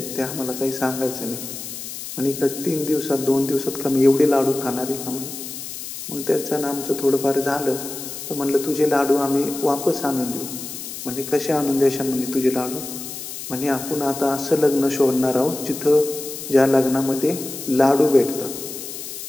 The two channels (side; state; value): left; noise; hiss, 9 dB below the sound